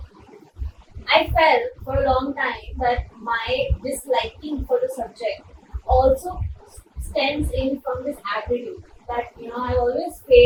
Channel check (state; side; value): identical; both; correlation 1.00